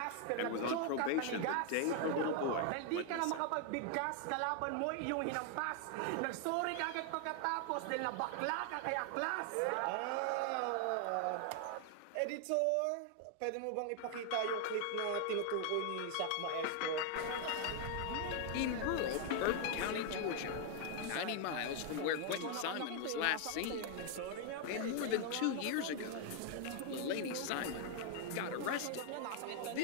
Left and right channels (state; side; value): different; both; correlation 0.00